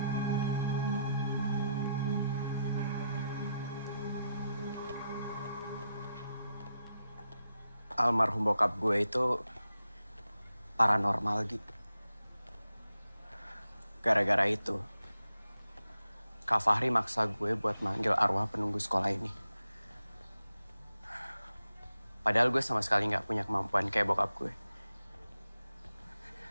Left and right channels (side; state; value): both; inverted; correlation -0.86